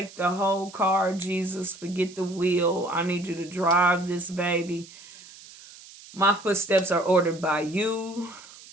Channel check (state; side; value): noise; right; hiss, 19 dB below the sound